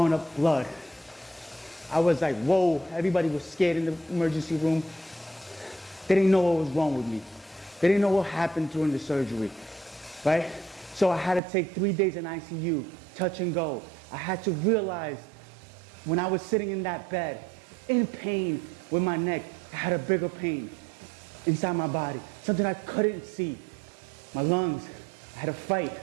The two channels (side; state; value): left; drops out; at 11.4 s